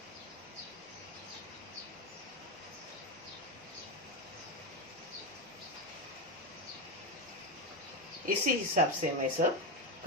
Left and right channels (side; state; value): both; normal; correlation 0.11